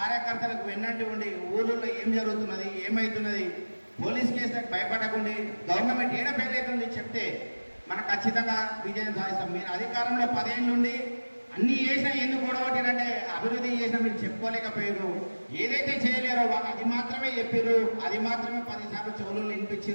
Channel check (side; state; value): both; inverted; correlation -1.00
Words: వెన్నంటి ఉండి ఊళ్ళో ఏం జరుగుతున్నది, ఏమవుతున్నది, పోలీస్ కేసులకు భయపడకుండా గవర్నమెంట్ ఏడ ఫెయిల్ అవుతుంది చెప్తే మనం ఖచ్చితంగా విజయం సాధిస్తాం. మీరు అధికారంలో 10 ఏళ్ళ నుండి అన్ని చేసినా ఎందుకు గొడవట్టినంటే అభివృద్ధి చేసినా మీరు చెప్పుకోలేకపోయారు. ఏదైతే చేయలేరో వాళ్ళు అది మాత్రమే చెప్పారు, అది మాత్రమే 10 సార్లు చెవులు